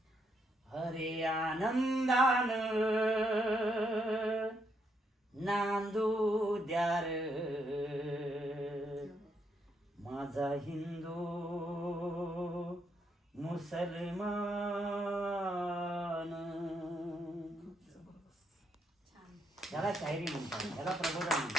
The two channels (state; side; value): normal; both; correlation 0.76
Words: हरे आनंदान नांदू द्यार माझा हिंदू मुसलमान. याला शायरी म्हणतात, याला प्रबोधन